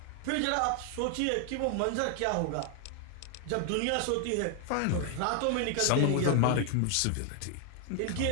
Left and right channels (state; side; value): different; both; correlation 0.00